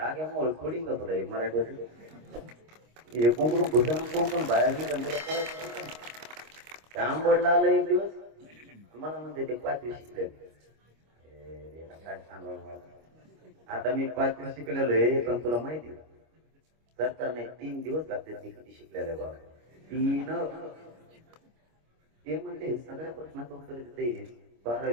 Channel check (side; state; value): left; late; 25 ms